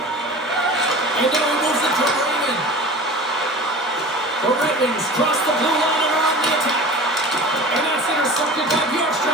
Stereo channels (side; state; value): both; normal; correlation 0.37